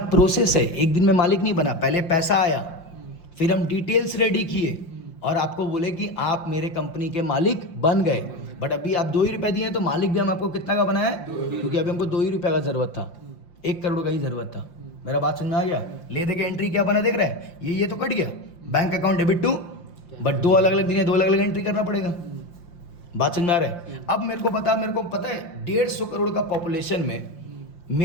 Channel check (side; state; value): right; late; 5.7 ms